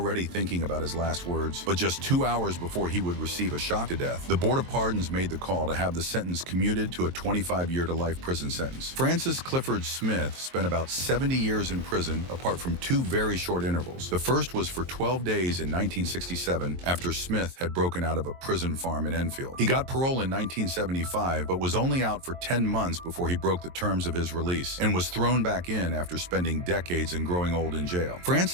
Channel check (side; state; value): left; late; 23 ms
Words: thinking about his last words. But just 2 hours before he would receive a shock to death, the Board of Pardons made the call to have the sentence commuted to a 25-year-to-life prison sentence. Francis Clifford Smith spent about 70 years in prison, apart from 2 very short intervals. The first was for 12 days in 1967 after Smith had broken out of a prison farm in Enfield. He got parole in 1975 but was only out for 10 months before he broke the terms of his release and was thrown back in after spending decades and growing old in jail.